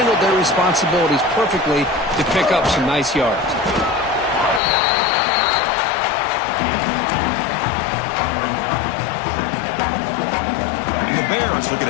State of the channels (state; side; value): drops out; right; at 4.6 s